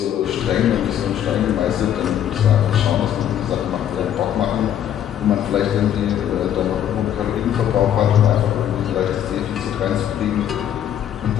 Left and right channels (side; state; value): right; quieter; 10.3 dB